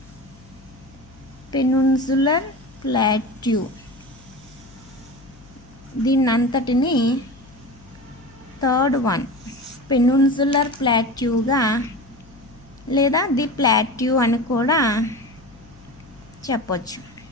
దీన్నంతటిని థర్డ్ వన్ పెనిన్సులర్ ప్లాట్యూగా లేదా ది ప్లాట్యూ అని కూడా చెప్పొచ్చు,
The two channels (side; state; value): left; noise; hum, 24 dB below the sound